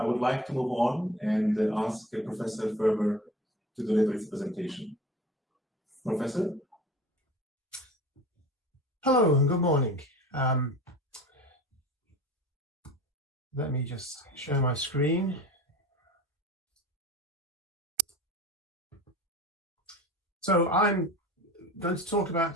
would like to move on and ask Professor Ferber to deliver his presentation. Professor? Hello and good morning. Let me just share my screen. So I'm going to talk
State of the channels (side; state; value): both; normal; correlation 0.39